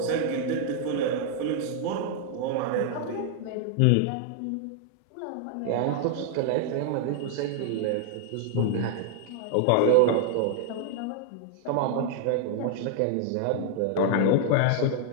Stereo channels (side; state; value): both; different; correlation 0.00